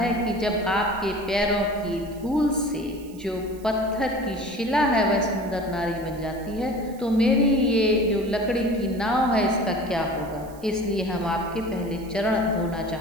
कि जब आपके पैरों की धूल से जो पत्थर की शिला है वह सुंदर नारी बन जाती है, तो मेरी ये जो लकड़ी की नाव है इसका क्या होगा। इसलिए हम आपके पहले चरण धोना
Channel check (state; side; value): noise; right; hiss, 23 dB below the sound